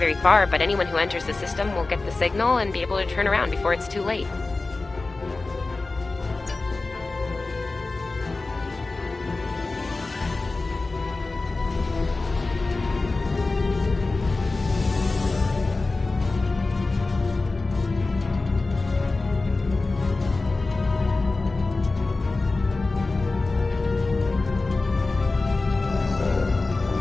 far, but anyone who enters the system will get the signal and be able to turn around before it's too late.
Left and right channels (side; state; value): right; quieter; 3.5 dB